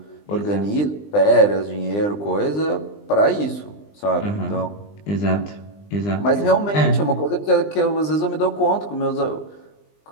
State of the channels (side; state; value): right; late; 20 ms